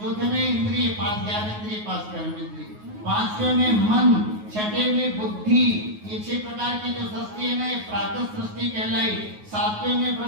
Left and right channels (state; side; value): late; left; 9.5 ms